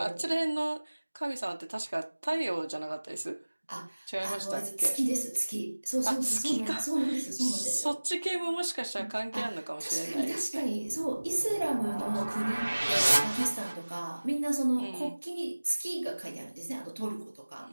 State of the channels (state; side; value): inverted; both; correlation -1.00